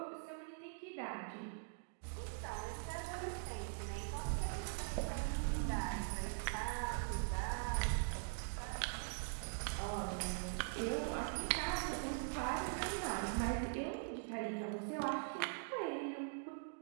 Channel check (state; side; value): silent; left; digital silence